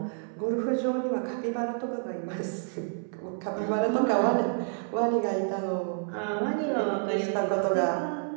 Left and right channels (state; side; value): silent; left; 59 dB below the other